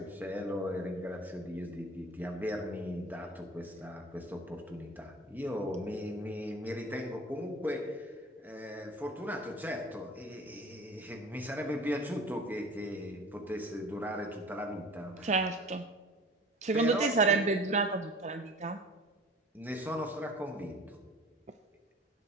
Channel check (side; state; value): both; normal; correlation 0.43